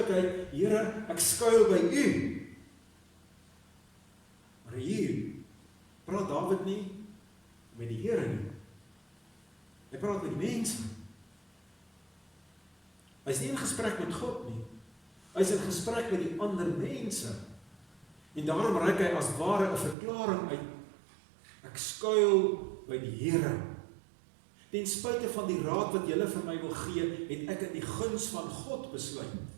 Here, ek skuil by U. Maar hier praat Dawid nie met die Here nie. Hy praat met die mense. Hy is nie in gesprek met God nie. Hy is in gesprek met die ander mense. En daarom reik hy as ware 'n verklaring uit. Ek skuil by die Here. Ten spyte van die raad wat julle vir my wil gee, het ek in die guns van God besluit.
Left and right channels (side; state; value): left; drops out; at 20.0 s